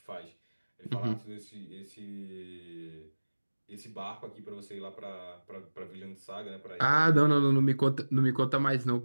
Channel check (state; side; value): inverted; both; correlation -1.00